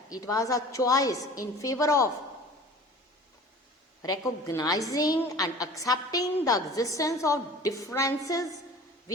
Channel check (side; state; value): both; normal; correlation 0.43